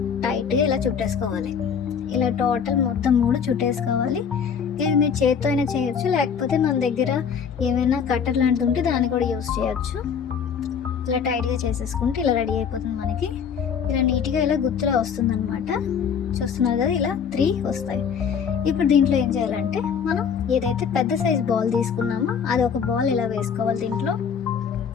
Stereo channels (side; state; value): right; quieter; 7.0 dB